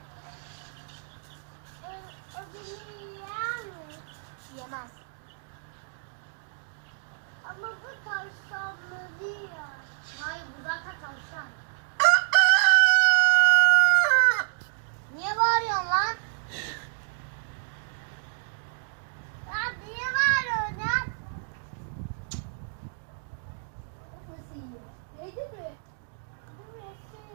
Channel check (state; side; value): silent; left; digital silence